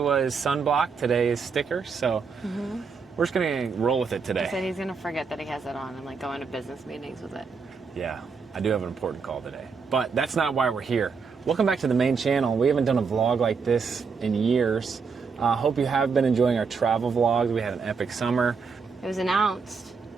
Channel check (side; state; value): left; quieter; 5.3 dB